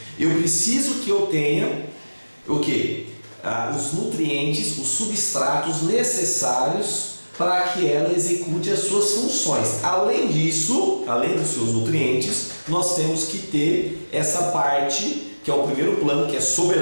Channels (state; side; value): inverted; both; correlation -1.00